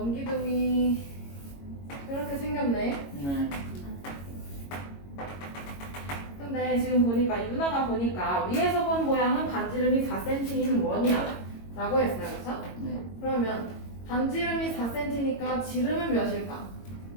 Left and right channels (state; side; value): late; right; 22 ms